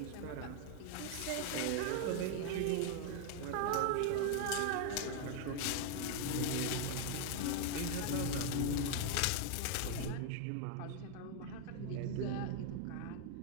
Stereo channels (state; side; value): different; both; correlation 0.00